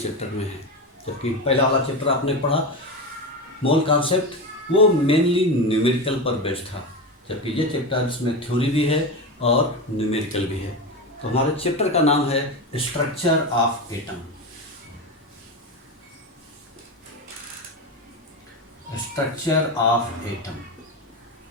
में है। जबकि पहला वाला चैप्टर आपने पढ़ा मोल कॉन्सेप्ट, वो मेनली न्यूमेरिकल पर बेस्ड था, जबकि ये चैप्टर इसमें थ्योरी भी है और न्यूमेरिकल भी है। तो हमारे चैप्टर का नाम है structure of atom. Structure of atom,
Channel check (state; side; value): normal; both; correlation 0.19